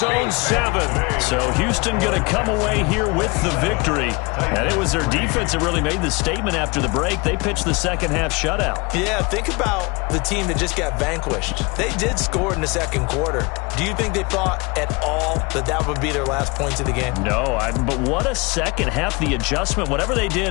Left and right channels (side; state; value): right; quieter; 26.7 dB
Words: own 7. So Houston going to come away here with the victory. And it was their defense that really made the statement after the break. They pitched the second half shutout. Yeah, think about the team that just got vanquished. They did score in the 2nd quarter. Do you think they thought at all that that would be their last points of the game? No, but what a second half. The adjustment, whatever they